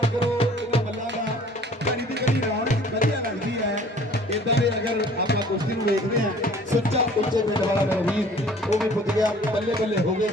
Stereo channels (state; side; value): normal; both; correlation 0.52